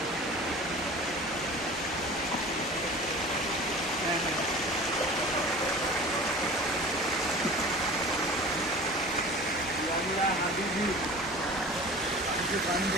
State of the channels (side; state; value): both; normal; correlation 0.40